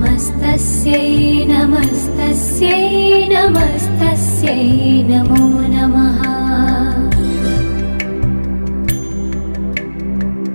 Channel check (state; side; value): inverted; both; correlation -1.00